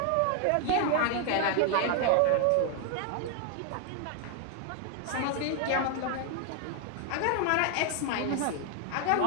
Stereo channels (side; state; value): both; different; correlation 0.00